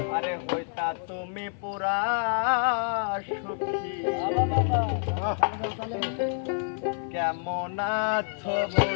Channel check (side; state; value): right; silent; 59 dB below the other